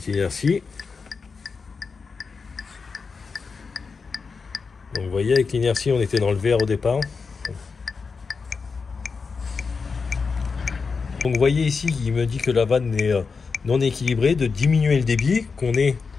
inertie. Donc vous voyez, avec l'inertie, on était dans le vert au départ. Donc vous voyez ici, il me dit que la vanne est non équilibrée, de diminuer le débit, qu'on est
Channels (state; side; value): quieter; right; 5.0 dB